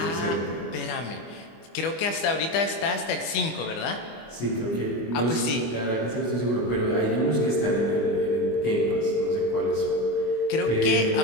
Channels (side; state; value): right; late; 25 ms